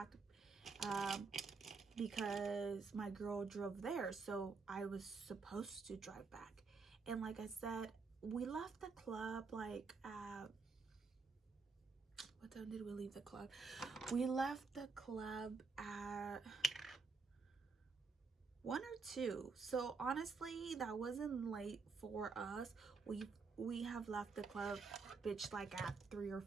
because my girl drove there, so I was supposed to drive back. And like I said, we left the club like at what time did we leave the club? We left the club at 1 or 2. So honestly, that wasn't late for us. We have left the club, bitch, like at 3 or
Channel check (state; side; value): quieter; left; 4.6 dB